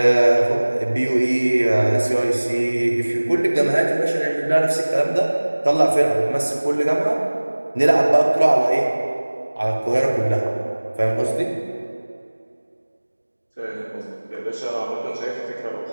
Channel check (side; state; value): both; inverted; correlation -1.00